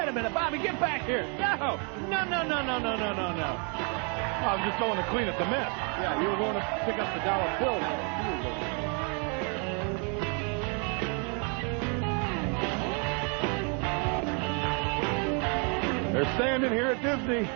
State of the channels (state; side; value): quieter; left; 37.3 dB